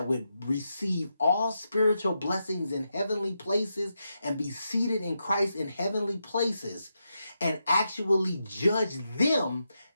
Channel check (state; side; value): inverted; both; correlation -0.85